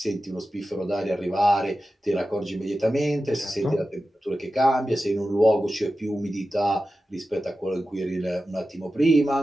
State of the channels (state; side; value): normal; both; correlation 0.93